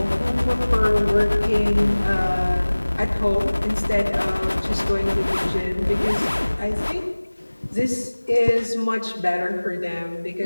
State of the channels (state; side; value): inverted; both; correlation -1.00